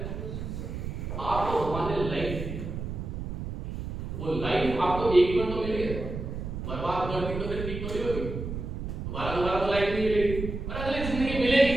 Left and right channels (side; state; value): right; noise; rumble, 6 dB below the sound